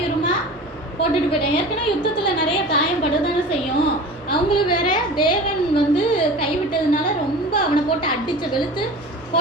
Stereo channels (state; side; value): normal; both; correlation 0.37